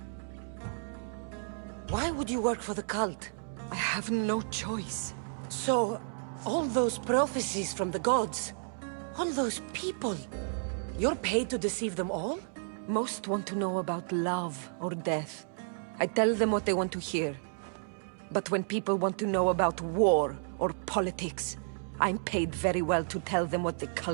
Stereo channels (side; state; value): left; silent; digital silence